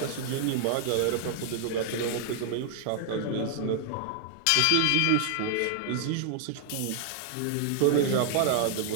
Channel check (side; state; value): both; different; correlation 0.00